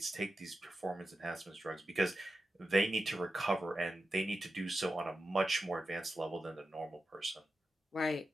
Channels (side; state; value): both; normal; correlation 0.91